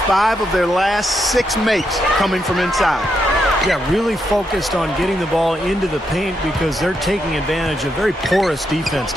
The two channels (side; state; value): both; normal; correlation 0.81